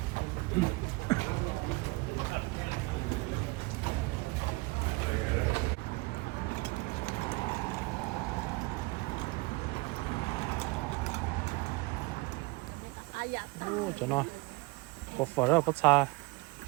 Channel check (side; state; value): left; quieter; 24.6 dB